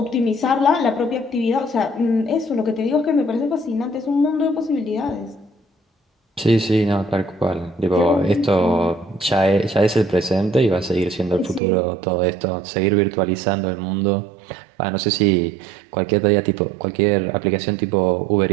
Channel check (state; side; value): drops out; left; at 11.6 s